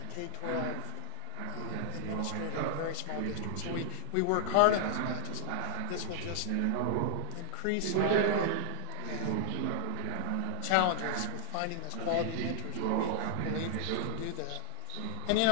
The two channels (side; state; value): both; different; correlation 0.00